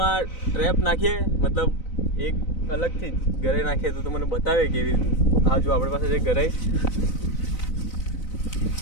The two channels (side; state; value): right; late; 4.0 ms